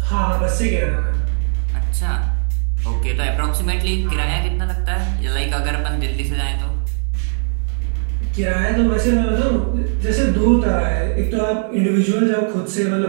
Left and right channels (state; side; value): silent; left; digital silence